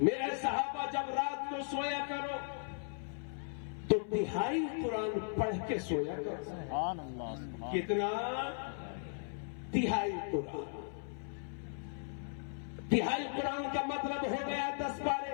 صحابہ جب رات کو سویا کرو تو تہائی قرآن پڑھ کے سویا کرو. سبحان اللہ سبحان. کتنا؟ تہائی قرآن. تہائی قرآن کا مطلب ہو گیا 10 پارے.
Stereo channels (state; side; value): silent; right; 53 dB below the other